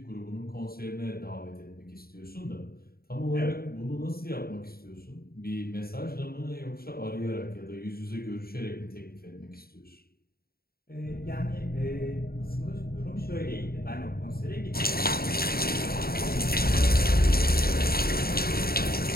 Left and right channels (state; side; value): late; right; 0.44 ms